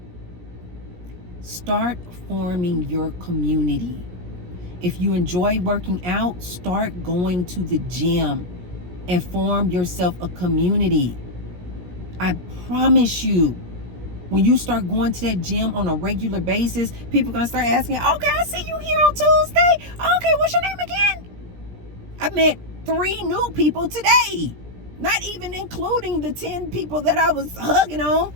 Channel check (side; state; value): left; late; 17 ms